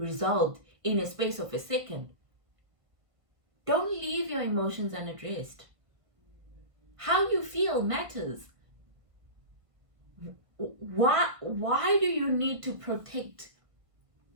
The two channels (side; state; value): left; late; 1.5 ms